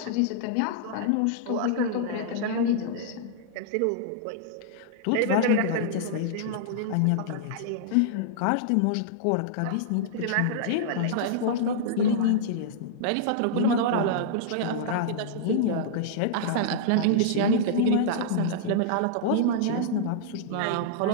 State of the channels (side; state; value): both; different; correlation -0.02